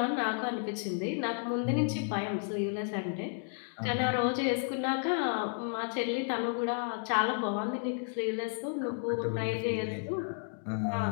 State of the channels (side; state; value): right; silent; 56 dB below the other